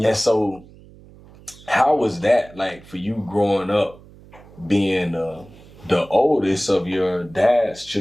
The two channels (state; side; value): noise; right; hum, 23 dB below the sound